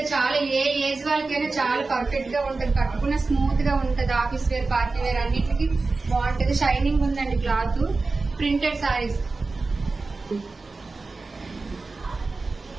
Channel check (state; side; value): quieter; left; 3.7 dB